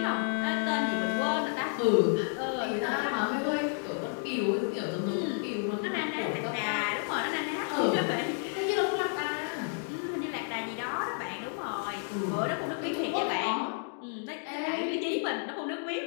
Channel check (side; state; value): right; silent; 56 dB below the other